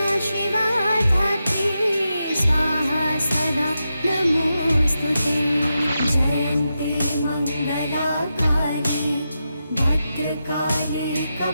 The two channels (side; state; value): both; inverted; correlation -0.89